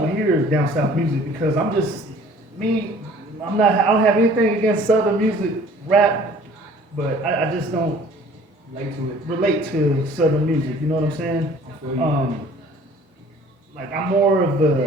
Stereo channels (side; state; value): both; normal; correlation 0.52